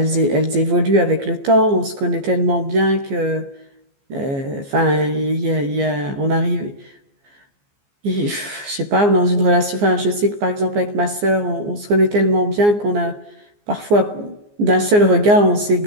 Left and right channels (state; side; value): late; left; 15 ms